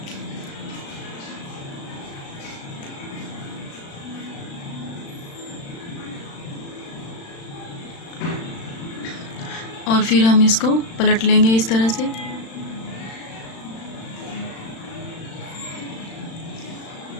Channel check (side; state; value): right; late; 36 ms